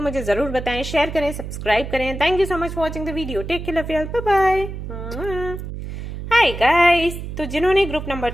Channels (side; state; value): right; noise; hum, 8 dB below the sound